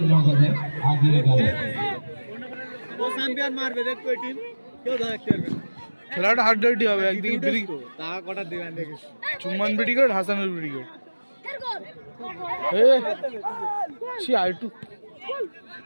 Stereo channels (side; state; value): both; inverted; correlation -1.00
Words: ও চ্যাম্পিয়ন মারবে দেখ ওই টিম কেউ ধরতে পারবে না খেলাটা হার্ড ডার্টি হবে একদিকে ব্রিক তা কটা দিবেন দেখিস চুম্মান ব্রিগেড হাসানুল ব্রিগেড এ সি আইটু